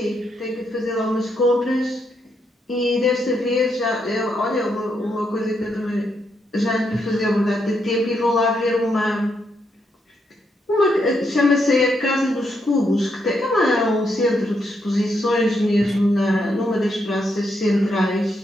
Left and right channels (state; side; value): normal; both; correlation 0.79